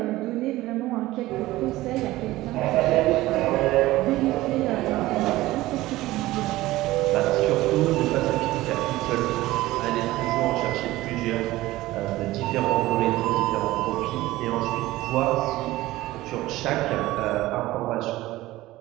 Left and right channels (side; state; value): left; quieter; 17.4 dB